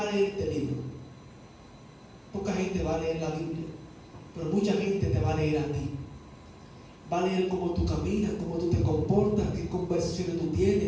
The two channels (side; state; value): both; identical; correlation 1.00